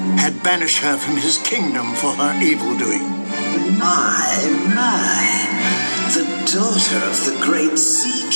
had banished her from his kingdom for her evil doing. My, the daughter of the great Sea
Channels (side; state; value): both; inverted; correlation -1.00